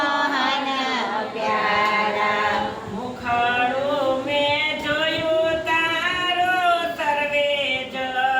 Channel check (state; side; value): identical; both; correlation 1.00